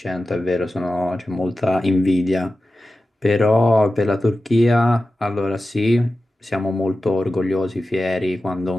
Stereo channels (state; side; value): normal; both; correlation 0.94